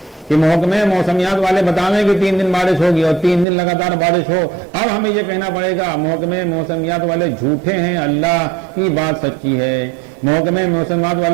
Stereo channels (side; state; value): left; drops out; at 3.5 s